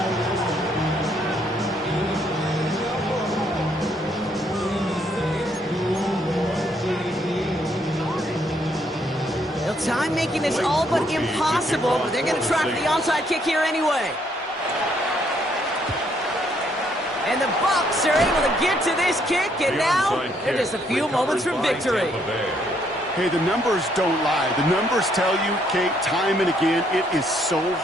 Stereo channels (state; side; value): normal; both; correlation 0.70